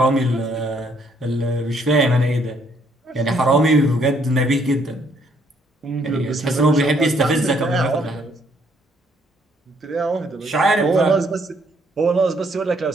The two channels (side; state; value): both; normal; correlation 0.68